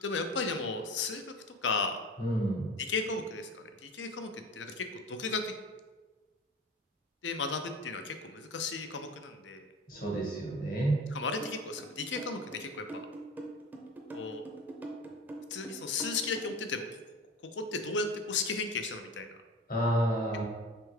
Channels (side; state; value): both; normal; correlation 0.35